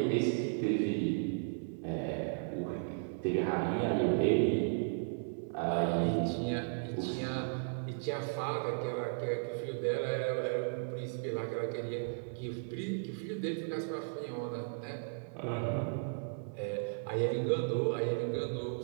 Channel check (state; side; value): silent; left; 54 dB below the other